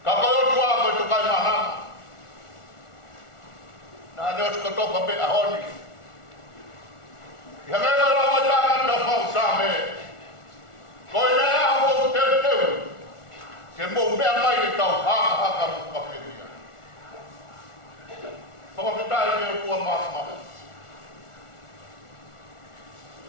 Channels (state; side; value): late; right; 1.4 ms